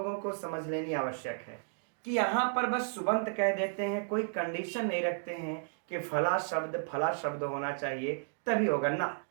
को समझ लेनी आवश्यक है कि यहाँ पर बस सुबंत कह देते हैं, कोई कंडीशन नहीं रखते हैं कि फला शब्द होना चाहिए तभी होगा ना।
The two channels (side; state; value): left; silent; digital silence